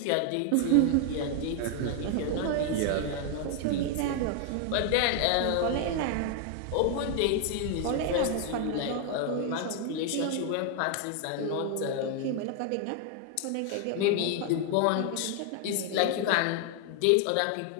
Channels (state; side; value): different; both; correlation 0.00